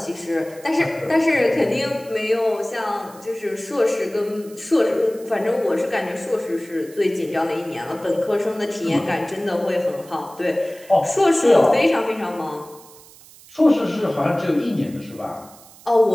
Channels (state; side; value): noise; right; hiss, 22 dB below the sound